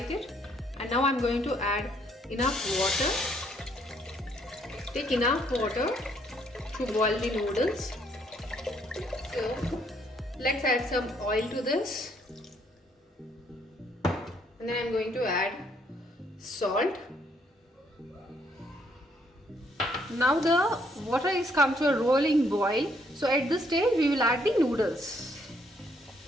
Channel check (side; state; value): both; normal; correlation 0.69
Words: it, and now I'm going to add enough water. Take enough water to boil the noodles. So let's add some oil to this, and then I'm going to add salt. Now the water is come to a rolling boil. So at this stage we will add the noodles.